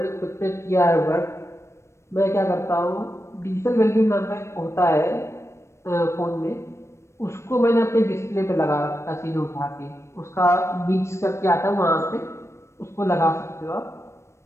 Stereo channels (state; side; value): late; right; 0.13 ms